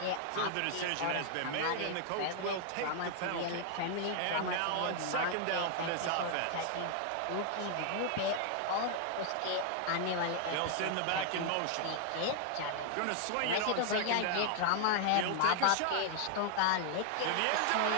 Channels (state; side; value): different; both; correlation 0.00